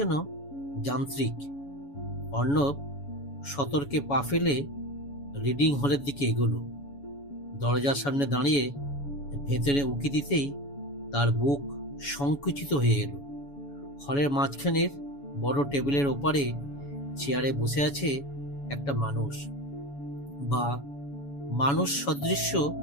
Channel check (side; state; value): right; late; 7.1 ms